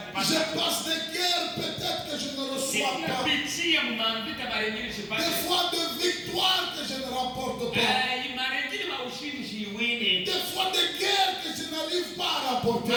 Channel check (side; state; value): both; identical; correlation 1.00